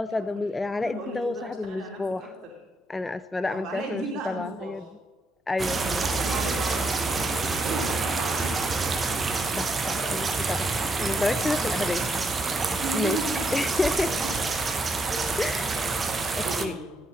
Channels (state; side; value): normal; both; correlation 0.78